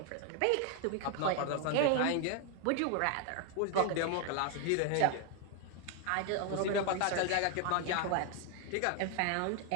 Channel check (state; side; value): different; both; correlation 0.00